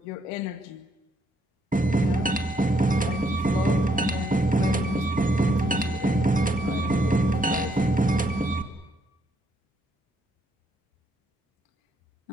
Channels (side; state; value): both; normal; correlation 0.72